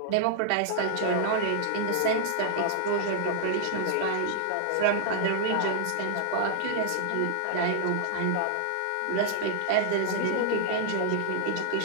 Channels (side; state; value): both; different; correlation -0.01